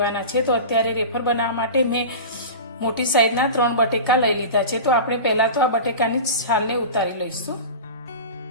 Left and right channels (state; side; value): inverted; both; correlation -0.30